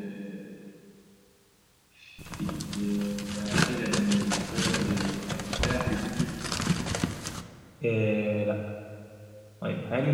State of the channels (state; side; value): identical; both; correlation 1.00